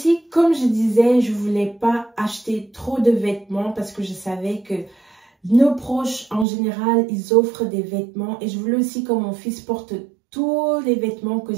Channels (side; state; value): left; drops out; at 6.5 s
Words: comme je disais, je voulais pas acheter trop de vêtements parce que je savais que nos proches, en général, ils offrent des vêtements. Et je voulais aussi que mon fils porte tous les vêtements que